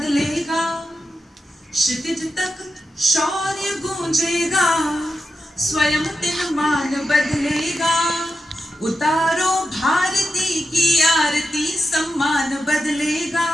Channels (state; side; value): normal; both; correlation 0.89